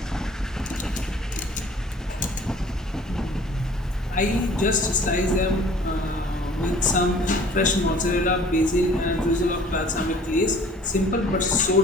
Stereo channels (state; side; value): normal; both; correlation 0.50